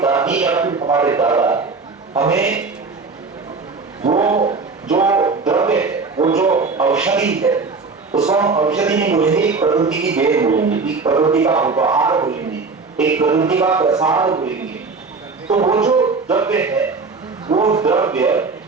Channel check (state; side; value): quieter; left; 4.4 dB